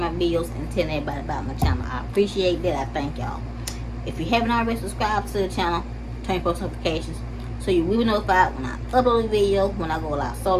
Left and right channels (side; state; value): both; identical; correlation 1.00